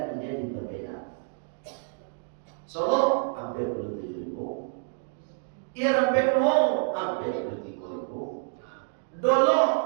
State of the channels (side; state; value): left; silent; 59 dB below the other